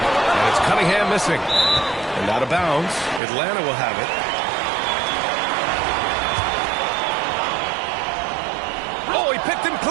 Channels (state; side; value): drops out; left; at 3.2 s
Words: it's Cunningham missing. And out of bounds. Atlanta will have it. Oh, he picked him